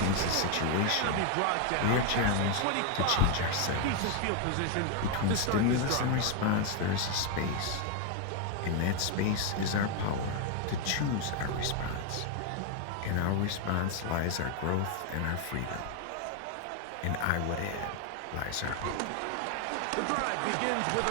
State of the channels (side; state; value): both; different; correlation 0.01